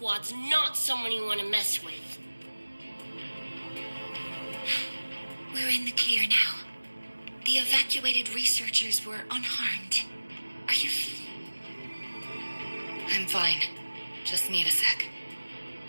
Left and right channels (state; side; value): inverted; both; correlation -1.00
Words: not someone you want to mess with. We're in the clear now. The evacuated researchers were unharmed. Are you... I'm fine. Just need a sec.